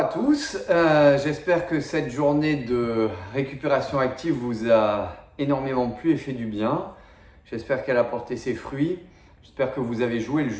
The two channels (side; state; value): both; identical; correlation 1.00